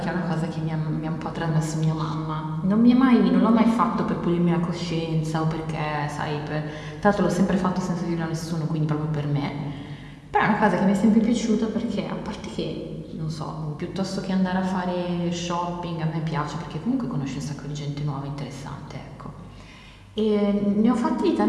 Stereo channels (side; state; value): both; identical; correlation 1.00